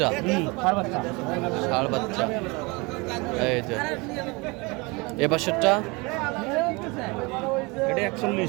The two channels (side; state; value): left; quieter; 26.5 dB